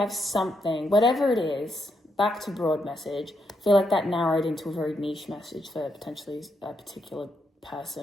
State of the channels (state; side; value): normal; both; correlation 0.79